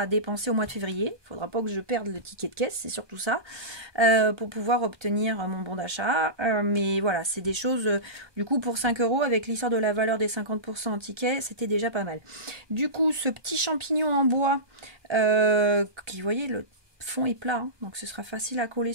dépenser au mois de février. Il faudra pas que je perde le ticket de caisse, c'est surtout ça, pour pouvoir obtenir mon bon d'achat. Mais voilà, c'est des choses, du coup pour 5 € avec l'histoire de la valeur des 50% en ticket, c'était déjà pas mal. Du coup ce petit champignon en bois, qui vous voyez le fond est plat, hein, donc ce sera facile à coller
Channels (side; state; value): left; late; 1.2 ms